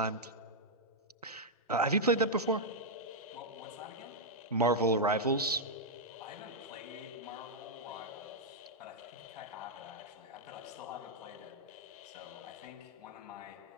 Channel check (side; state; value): both; normal; correlation -0.05